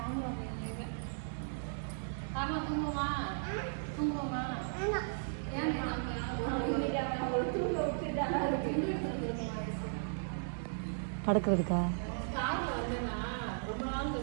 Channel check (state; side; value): silent; left; digital silence